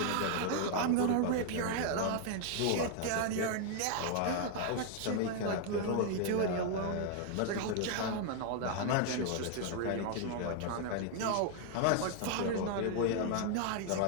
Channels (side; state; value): both; different; correlation 0.00